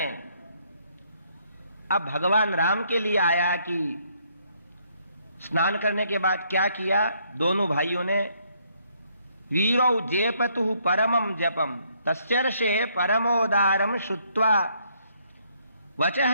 अब भगवान राम के लिए आया कि स्नान करने के बाद क्या किया? दोनों भाइयों ने वीरौ जेपतु परमं जपम तस्यर्षे परमोदारम श्रुत्वा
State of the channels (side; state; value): both; inverted; correlation -0.70